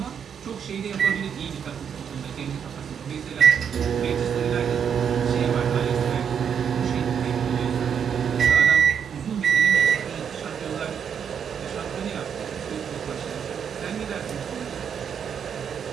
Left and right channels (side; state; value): left; quieter; 7.6 dB